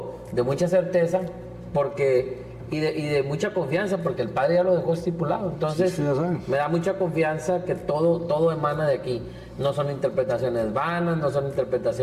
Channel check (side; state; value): both; identical; correlation 1.00